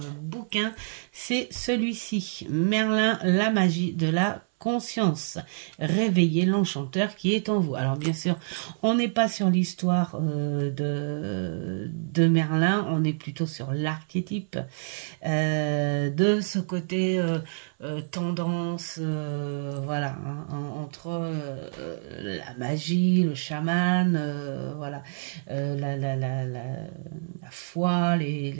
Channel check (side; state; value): left; silent; 58 dB below the other